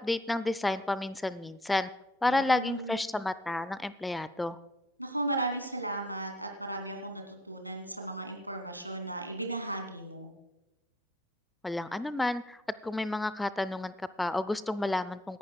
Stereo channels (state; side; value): normal; both; correlation 0.61